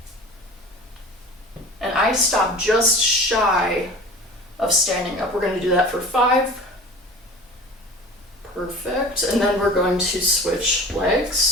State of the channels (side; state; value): both; normal; correlation 0.39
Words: And I stop just shy of standing up. We're going to do that for 5. Perfect. And then we're going to switch